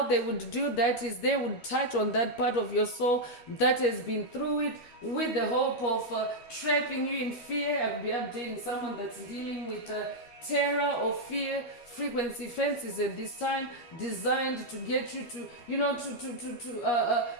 they would do that is they would touch on that part of your soul that has been through it, with the hope of trapping you in fear. I'll be updating someone that's dealing with terror or fear frequency fences at this time, designed to get you to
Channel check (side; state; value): right; late; 12 ms